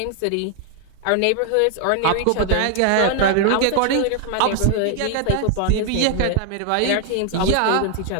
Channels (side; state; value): both; different; correlation 0.00